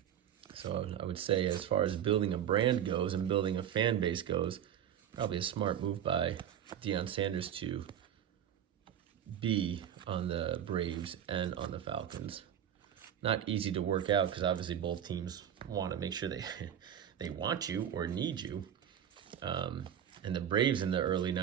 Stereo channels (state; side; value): quieter; left; 9.8 dB